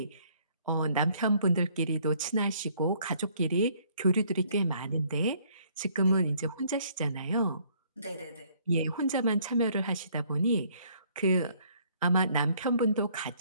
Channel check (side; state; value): both; inverted; correlation -0.63